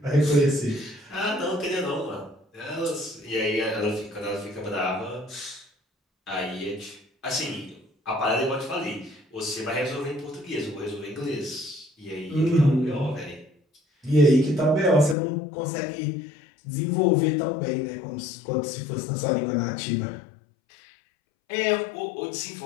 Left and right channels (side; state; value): right; drops out; at 15.2 s